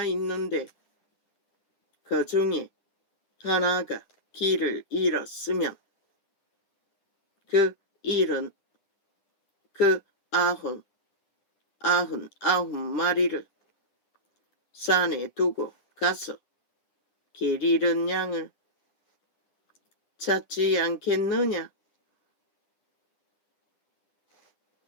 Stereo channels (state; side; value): late; right; 9.9 ms